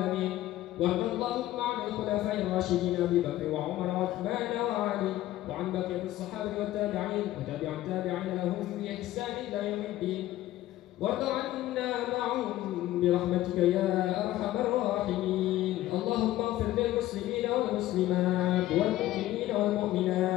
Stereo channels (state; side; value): quieter; right; 14.9 dB